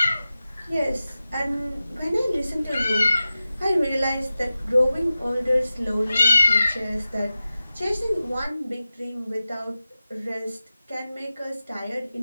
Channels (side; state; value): both; inverted; correlation -0.94